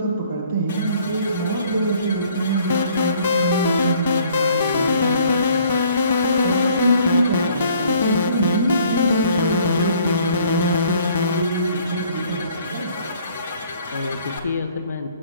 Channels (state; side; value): inverted; both; correlation -0.59